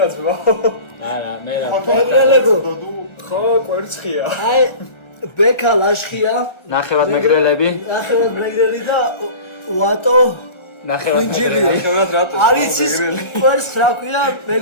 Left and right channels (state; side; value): late; right; 1.4 ms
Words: ძმა. არა მე რა. მეგრელებო ხო, ვერცხია. აი ბექა ლაშხია ნახევად მეგრელები. ნახევად მეგრელი და ვატო ხვინჯილი ნახევრად რატო? არის ის კვერცხს რა ქვია